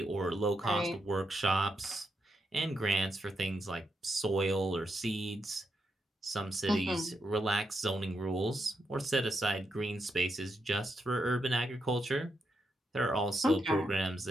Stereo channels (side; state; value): both; normal; correlation 0.82